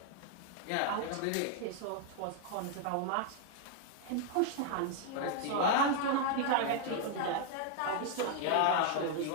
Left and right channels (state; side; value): different; both; correlation 0.00